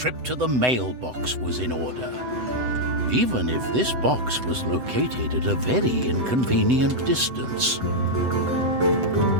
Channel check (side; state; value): left; late; 7.9 ms